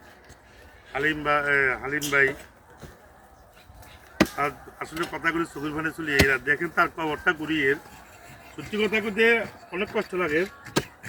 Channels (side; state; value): both; identical; correlation 1.00